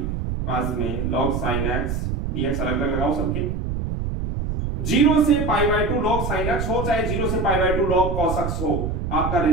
पास में log sin x dx अलग अलग लगाओ सबके। 0 से पाई बाय 2 log sin x हो चाहे 0 से पाई बाय 2 log cos x हो, आपका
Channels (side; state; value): right; noise; rumble, 2 dB below the sound